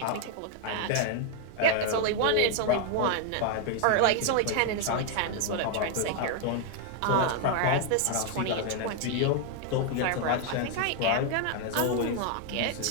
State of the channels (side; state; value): both; different; correlation 0.00